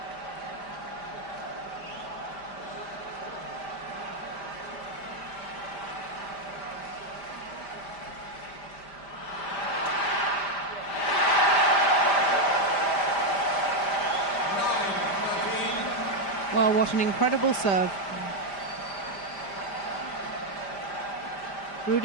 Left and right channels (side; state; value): right; late; 5.0 ms